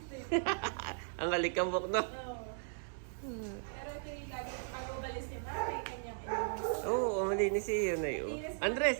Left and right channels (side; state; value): left; silent; digital silence